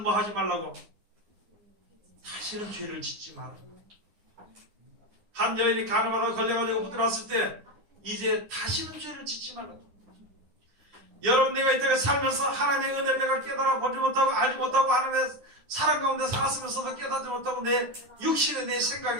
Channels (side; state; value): left; late; 9.9 ms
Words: 뭐 하지 말라고 다시는 죄를 짓지 마라. 한 여인이 간음하다가 걸려가지고 붙들어왔을 때 이제 다시는 죄를 짓지 말라고. 여러분, 내가 이때가 살면서 하나님의 은혜를 내가 깨달아 보지 못하고 알지 못하고 하나님의 사랑 가운데 살았으면서도 깨닫지 못하고 내 육신의 내